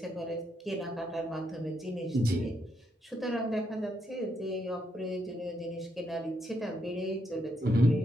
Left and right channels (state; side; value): normal; both; correlation 0.78